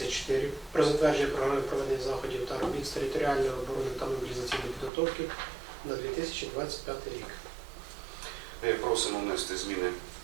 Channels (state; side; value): drops out; left; at 4.9 s